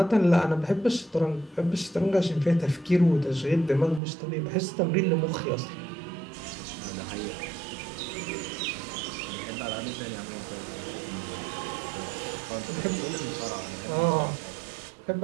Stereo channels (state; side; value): drops out; left; at 4.0 s